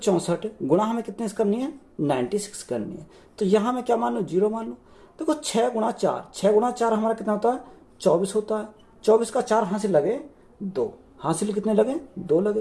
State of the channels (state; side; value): identical; both; correlation 1.00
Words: गुणा हमें कितने करनी है? 96 करनी है। तो यहां मैं क्या मान लूं? 0 मान लूं। देखो 6 गुणा 4, 6 गुणा 4 हमारा कितना होता है? 24 होता है। 24 का 4 हासिल लगे 2, हासिल कितने लगे? 2